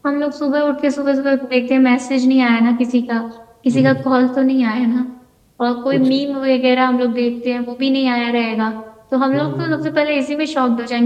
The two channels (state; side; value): identical; both; correlation 1.00